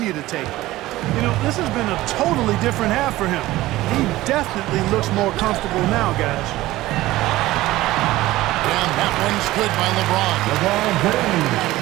to take them. You know, this has been a totally different half for him. He definitely looks more comfortable now, guys. And that one's good by LeBron.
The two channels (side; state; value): left; quieter; 17.0 dB